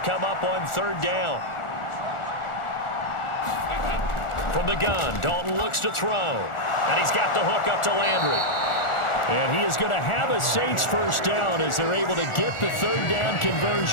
up on 3rd down. From the gun, Dalton looks to throw, and he's got the hook up to Landry. And he is going to have a Saints first down as they're able to get the 3rd down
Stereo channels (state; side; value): late; right; 1.4 ms